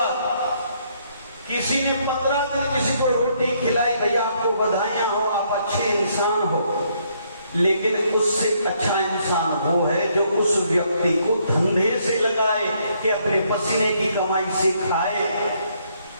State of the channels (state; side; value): inverted; both; correlation -0.70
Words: किसी ने 15 दिन किसी को रोटी खिलाई, भैया आपको बधाइयां हो, आप अच्छे इंसान हो। लेकिन उससे अच्छा इंसान वो है जो उस व्यक्ति को धंधे से लगाए कि अपने पसीने की कमाई से खाए,